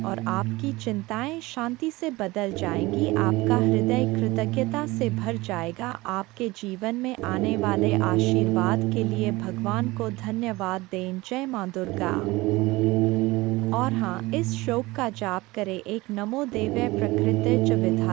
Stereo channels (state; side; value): quieter; left; 21.0 dB